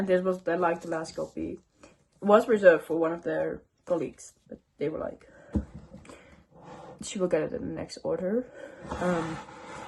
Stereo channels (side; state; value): both; identical; correlation 1.00